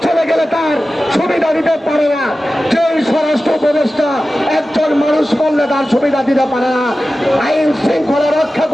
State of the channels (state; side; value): normal; both; correlation 0.94